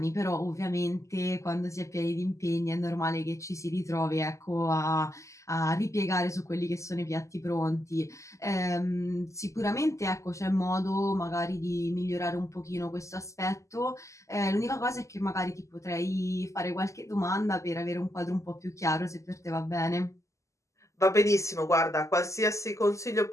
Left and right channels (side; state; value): right; late; 0.15 ms